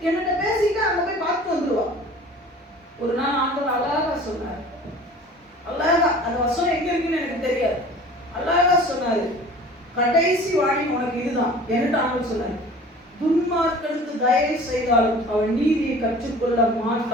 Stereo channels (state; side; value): normal; both; correlation 0.44